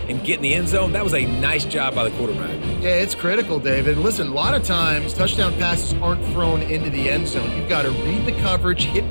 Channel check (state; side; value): inverted; both; correlation -1.00